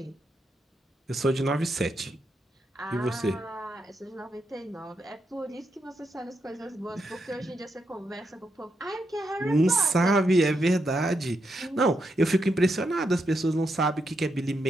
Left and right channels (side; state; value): both; normal; correlation 0.82